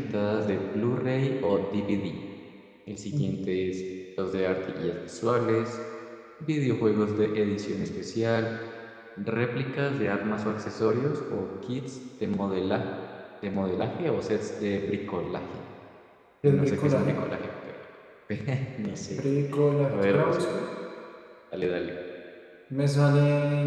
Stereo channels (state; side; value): identical; both; correlation 1.00